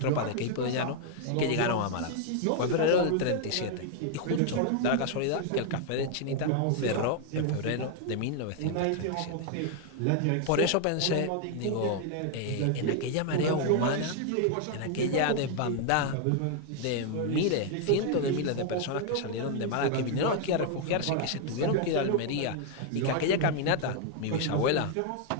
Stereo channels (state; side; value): different; both; correlation 0.00